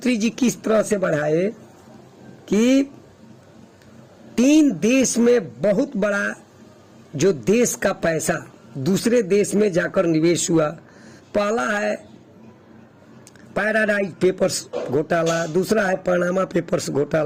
जी किस तरह से बढ़ाए कि 3 देश में बहुत बड़ा जो देश का पैसा दूसरे देश में जाकर निवेश हुआ। पहला है पैराडाइज पेपर्स घोटाला, दूसरा है पनामा पेपर्स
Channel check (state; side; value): identical; both; correlation 1.00